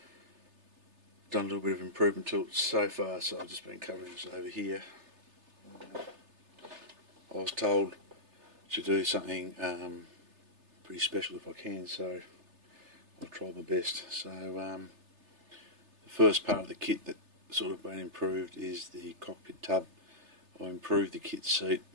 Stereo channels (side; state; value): left; late; 3.3 ms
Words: a little bit of improvement to it so far, so I've just been covering this over here. I was told to do something pretty special if I can, so I'll try my best. So the first part of the kit that sort of been improved is the cockpit tub. I improved the kit seat,